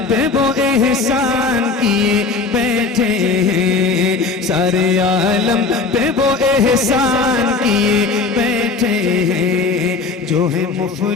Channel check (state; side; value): quieter; right; 4.2 dB